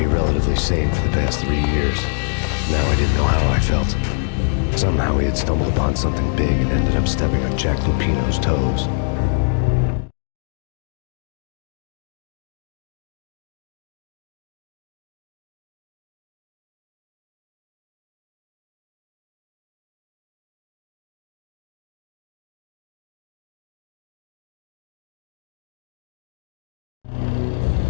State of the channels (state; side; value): silent; right; digital silence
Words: relatively sane for the past 3 years. Now I didn't know how I felt. Somehow he had stumbled upon something big and ended up stepping on Jack Lupino's toes.